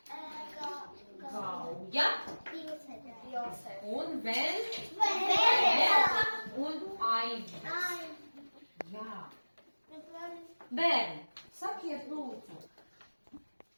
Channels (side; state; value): both; inverted; correlation -1.00